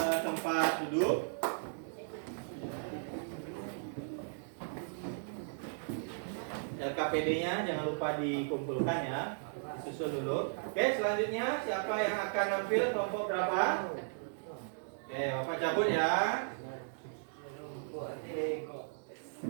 tempat duduk. LKPD-nya jangan lupa dikumpulkan ya, disusun dulu. Oke, selanjutnya siapa yang akan nampil kelompok berapa? Oke, Bapak cabut ya.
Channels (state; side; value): silent; left; digital silence